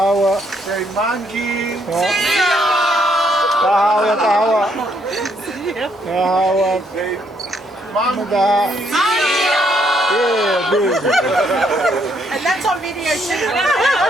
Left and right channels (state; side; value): normal; both; correlation 0.72